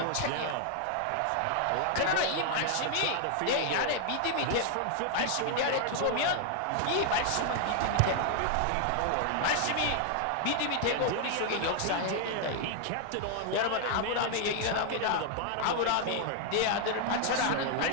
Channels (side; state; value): both; different; correlation 0.00